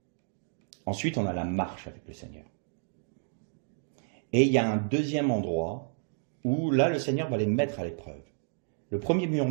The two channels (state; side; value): silent; left; digital silence